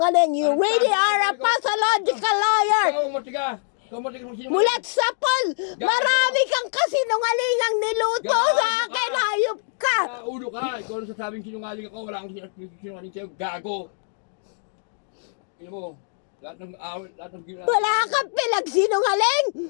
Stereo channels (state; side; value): silent; right; digital silence